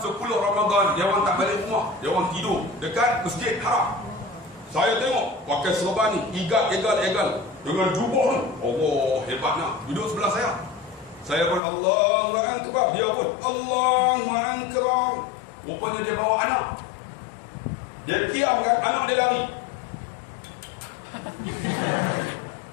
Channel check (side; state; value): right; drops out; at 11.6 s